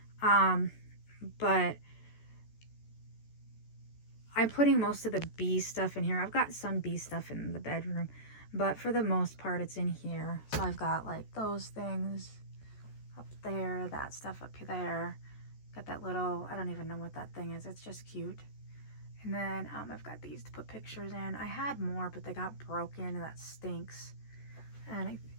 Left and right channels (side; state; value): right; late; 14 ms